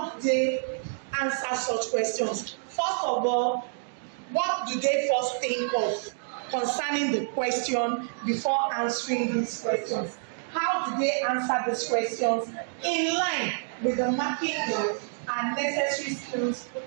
do they answer such questions? First of all, what do they first think of concerning the question before answering these questions? How do they answer these questions in line with the marking and necessary skills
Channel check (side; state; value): left; silent; digital silence